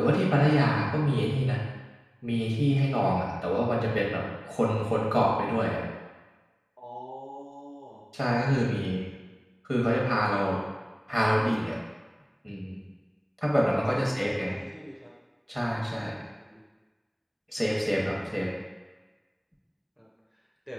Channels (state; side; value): identical; both; correlation 1.00